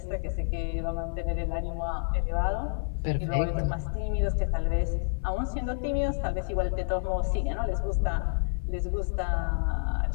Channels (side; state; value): right; silent; 59 dB below the other